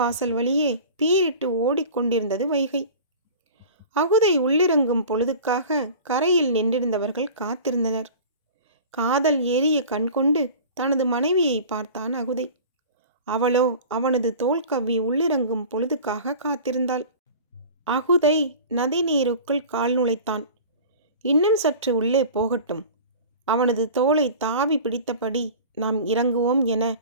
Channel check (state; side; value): inverted; both; correlation -0.39